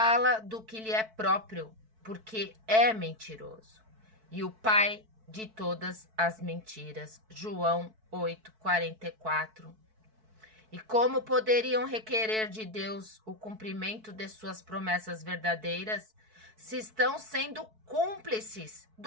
do que lhe é próprio, porque é mentiroso. E o pai de todas as mentiras. João 8:44. E como poderiam requerer de Deus o cumprimento de suas promessas verdadeiras, se estão sendo cúmplices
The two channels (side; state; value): left; late; 4.6 ms